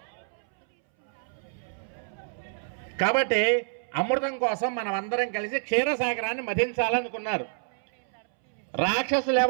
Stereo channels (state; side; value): silent; left; 59 dB below the other